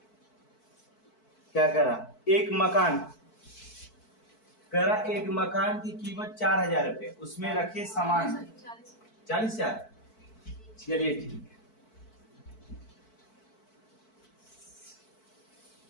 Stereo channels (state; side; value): late; right; 4.5 ms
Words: क्या कह रहा एक मकान कह रहा एक मकान की कीमत 4,000 रुपए उसमें रखे सामान 40,000 चलिए ठीक है।